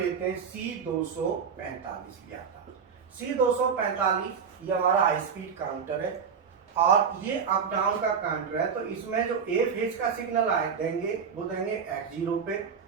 हैं C245 लिया था, C245 ये हमारा हाई स्पीड काउंटर है और ये अप डाउन का काउंटर है। तो इसमें जो A फेज का सिग्नल आए देंगे वो देंगे X0 पे,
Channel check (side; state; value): left; quieter; 6.5 dB